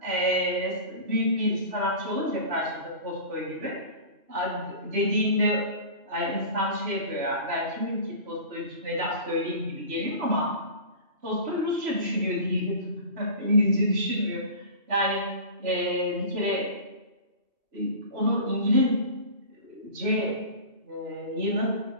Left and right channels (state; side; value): late; left; 3.1 ms